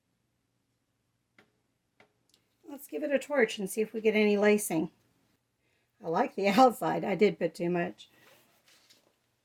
let's give it a torch and see if we get any lacing. I like the outside. I did put too much.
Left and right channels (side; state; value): both; identical; correlation 1.00